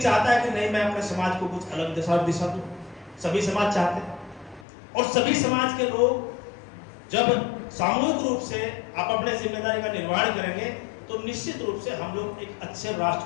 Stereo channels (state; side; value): drops out; right; at 4.7 s